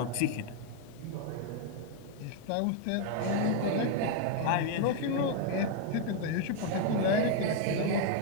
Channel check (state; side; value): different; both; correlation 0.01